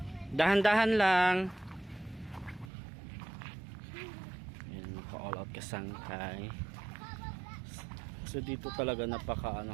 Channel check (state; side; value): drops out; left; at 2.7 s